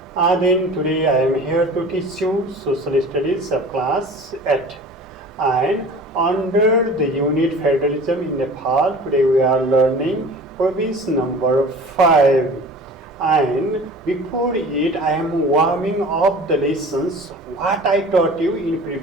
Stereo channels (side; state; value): both; normal; correlation 0.41